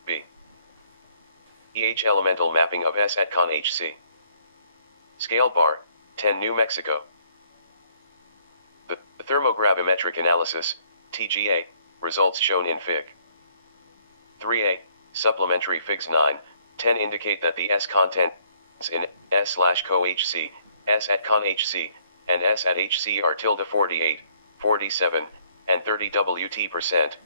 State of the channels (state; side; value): inverted; both; correlation -0.64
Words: B. EH elemental mapping of S at con HC. Scale bar, 10 New Mexico. The thermogravimetric analysis, TGA, results shown in Fig 3A, supplementary Figs 9, 10 indicate that the S contents in S/CoHC, S at con HC, and S at HC are 48, 47, and 30 Wt%,